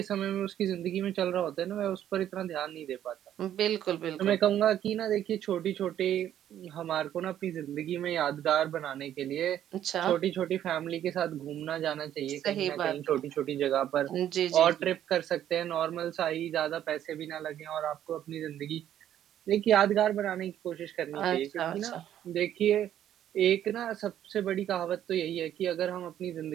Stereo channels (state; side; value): quieter; left; 11.1 dB